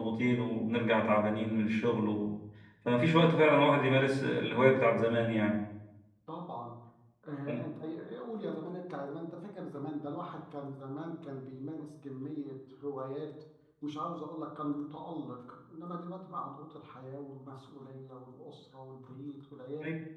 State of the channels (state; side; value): identical; both; correlation 1.00